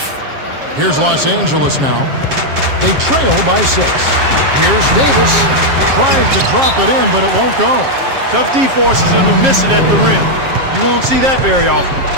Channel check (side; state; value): left; late; 7.5 ms